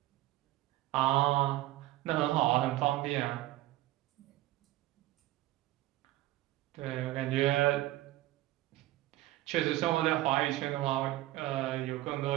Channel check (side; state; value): left; quieter; 16.1 dB